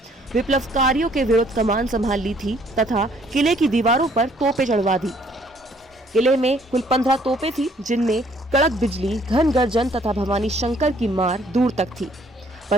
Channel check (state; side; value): normal; both; correlation 0.62